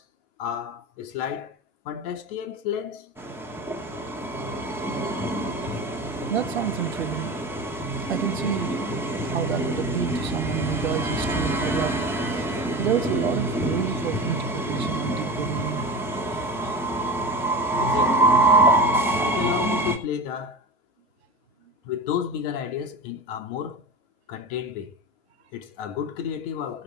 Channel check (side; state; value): both; normal; correlation 0.29